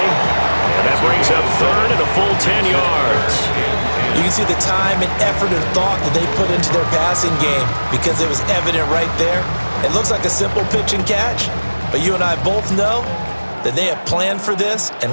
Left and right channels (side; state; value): both; inverted; correlation -1.00